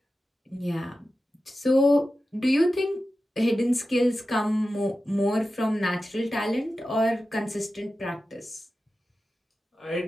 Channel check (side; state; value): both; normal; correlation 0.93